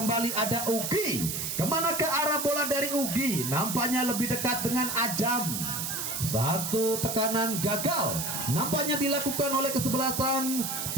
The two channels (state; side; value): noise; right; hiss, 3 dB below the sound